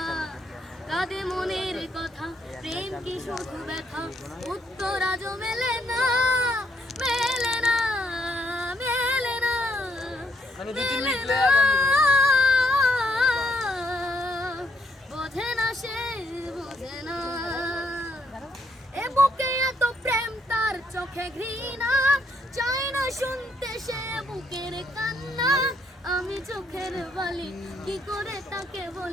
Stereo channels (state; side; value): normal; both; correlation 0.73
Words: কাঁদে মনের কথা, প্রেম কি শুধু ব্যথা, উত্তর আজও মেলে না। বোঝে না সে বোঝে না। এ বুকে এত প্রেম, তার চোখে ঘৃণা, চাই না শুনতে সে বুকের কান্না। আমি চোখের বলি কি করে তাকে